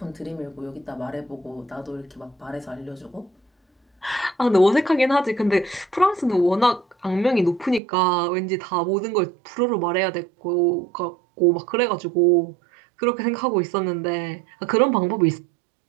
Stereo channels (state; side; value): drops out; left; at 7.8 s